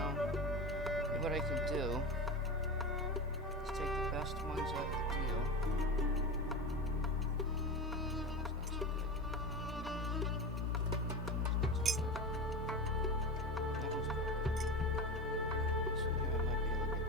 what I can do. Let's take the best ones out of the deal.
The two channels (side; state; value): both; normal; correlation 0.24